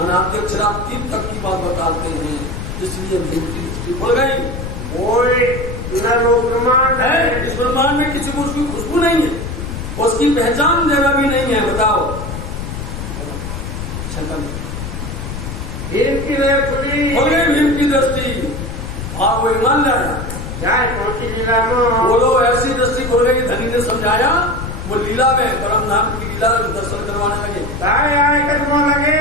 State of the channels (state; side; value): noise; left; rumble, 7 dB below the sound